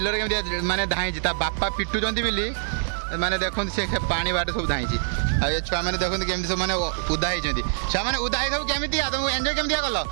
केमी माने धाई बापा पिटुंट बोली माने देखो से पानी बाट सब धाई ये छुआ मैंने देखते केमी सब मैंने उदा होती छुआ मैंने उदा सब केमी तुमको एंजॉय केमी कल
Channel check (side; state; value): left; silent; 62 dB below the other